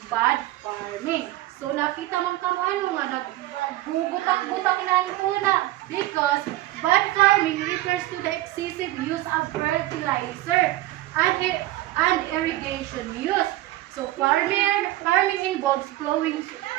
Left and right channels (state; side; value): quieter; left; 16.7 dB